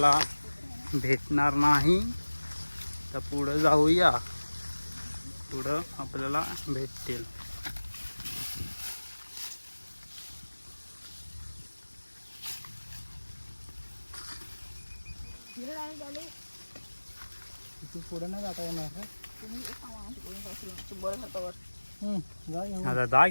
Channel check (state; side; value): inverted; both; correlation -1.00